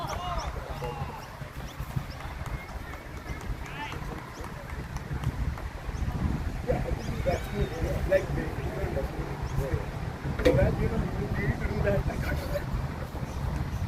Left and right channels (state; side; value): identical; both; correlation 1.00